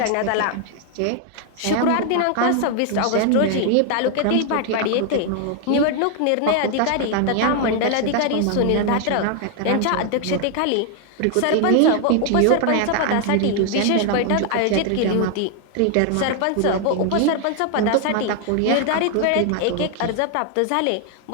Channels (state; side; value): different; both; correlation 0.00